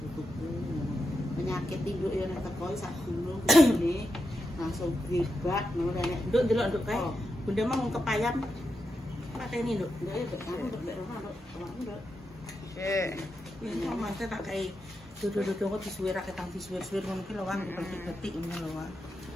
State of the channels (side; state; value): both; normal; correlation 0.86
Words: putuku. Penyakit nduk yo nek teko sak gunung ngene langsung gebak ngono nek nduk delok nduk kae. Bunda mah wong kepayang pateni nduk. Nduk yo aku nduk mek rono nduk. Nduk. Iki mante tak kae dodo-dodo kok disuwir ra ketang disuwir-suwir ngono ki lho Wang betik-betik ngono lho Wang.